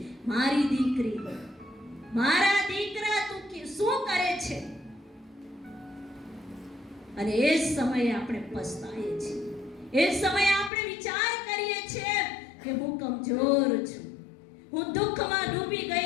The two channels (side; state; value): right; drops out; at 10.7 s